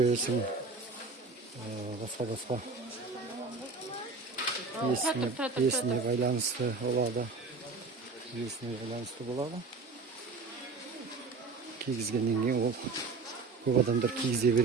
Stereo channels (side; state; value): left; quieter; 4.2 dB